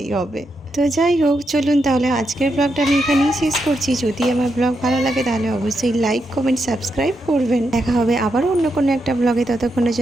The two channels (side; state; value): both; normal; correlation 0.83